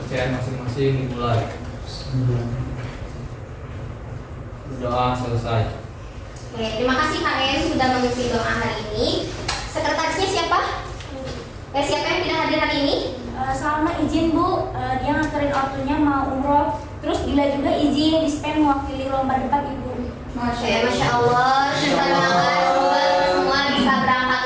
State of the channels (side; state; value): both; identical; correlation 1.00